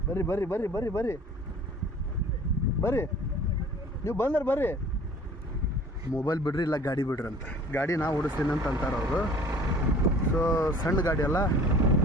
ಬರ್ರಿ ಬರ್ರಿ ಬರ್ರಿ ಬರ್ರಿ ಬರ್ರಿ ಬರ್ರಿ ನೀವು ಬಂದ್ರೆ ಬರ್ರಿ. ಮೊಬೈಲ್ ಬಿಡ್ರಿ ಇಲ್ಲ ಗಾಡಿ ಬಿಡ್ರಿ ಅಂತ. ಗಾಡಿ ನಾ ಓಡಿಸ್ತೀನಿ ಅಂತ ಅಂತಾರೆ ಅವರು. ಸೊ ಸಣ್ಣ ಗಾಡಿ ಅಲ್ಲ,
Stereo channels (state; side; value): normal; both; correlation 0.48